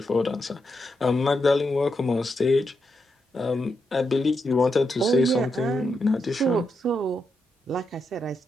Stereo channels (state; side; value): normal; both; correlation 0.84